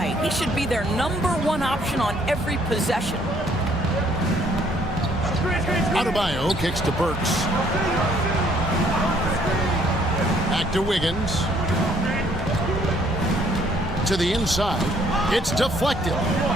He should be their #1 option on every possession. Adebayo kicks to Burks. Back to Wiggins. To the inside. It's deflected.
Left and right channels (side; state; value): both; normal; correlation 0.64